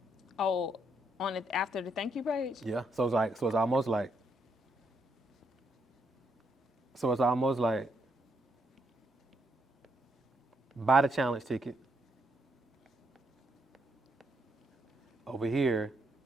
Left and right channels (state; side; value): normal; both; correlation 0.76